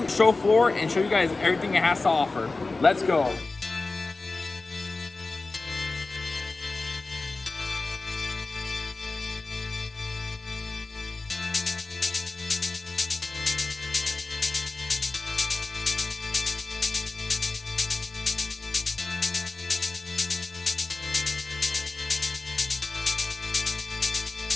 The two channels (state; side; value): quieter; right; 3.5 dB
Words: show floor, and show you guys everything it has to offer. Let's go.